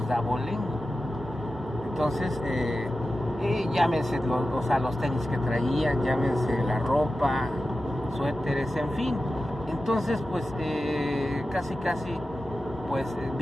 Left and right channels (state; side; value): normal; both; correlation 0.93